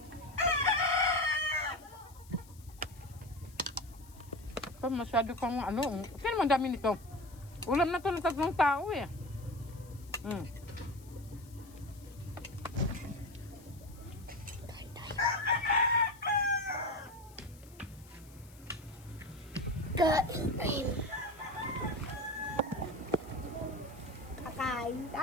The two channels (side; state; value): left; noise; hiss, 24 dB below the sound